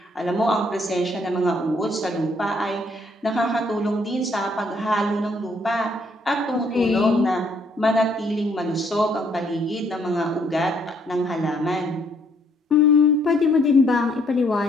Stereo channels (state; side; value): normal; both; correlation 0.67